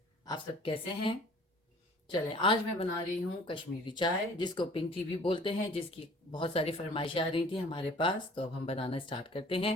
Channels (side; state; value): both; normal; correlation 0.51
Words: आप सब कैसे हैं? चलें, आज मैं बना रही हूँ कश्मीरी चाय, जिसको पिंक टी भी बोलते हैं, जिसकी बहुत सारी फरमाइशें आ रही थी हमारे पास, तो अब हम बनाना स्टार्ट करते हैं।